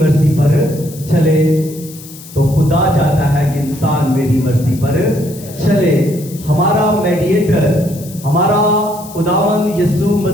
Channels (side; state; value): left; noise; hiss, 17 dB below the sound